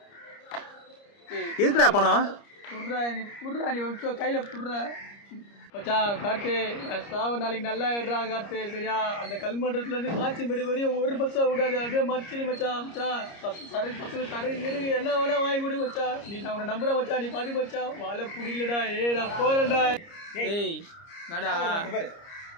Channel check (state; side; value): late; right; 30 ms